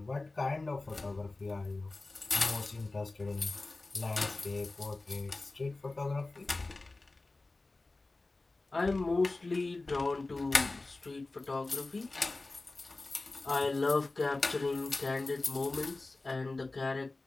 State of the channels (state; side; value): quieter; right; 3.2 dB